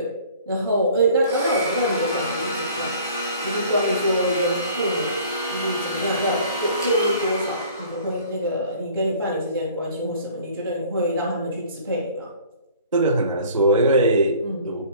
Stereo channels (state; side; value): inverted; both; correlation -0.51